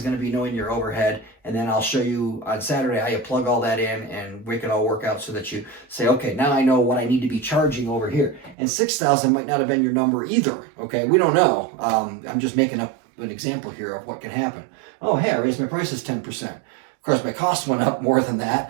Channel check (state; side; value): drops out; left; at 8.6 s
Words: going to be knowing your overhead. And then I'll show you on Saturday how you plug all that in and make it all work out so that you say, okay, now I know what I need to be charging over here. And 6,000 might not have been your number either, okay? We don't know. I'm just making up an example here of what can happen. Oh, hey, I raised my prices 10%. Of course, my cost went up more than